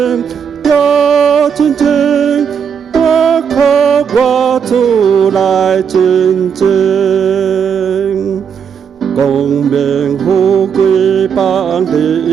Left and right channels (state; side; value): quieter; left; 7.2 dB